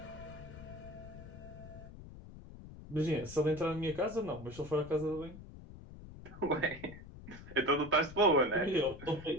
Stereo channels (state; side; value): noise; left; rumble, 15 dB below the sound